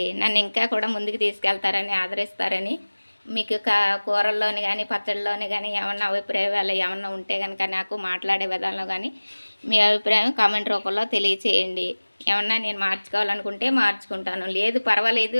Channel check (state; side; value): inverted; both; correlation -1.00